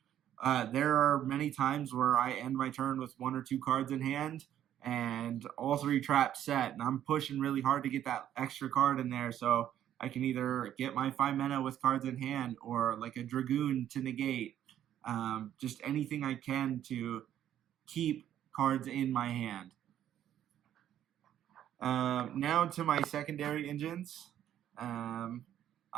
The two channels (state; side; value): quieter; left; 11.0 dB